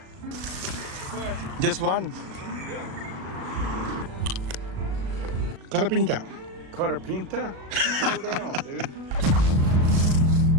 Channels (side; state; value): left; late; 37 ms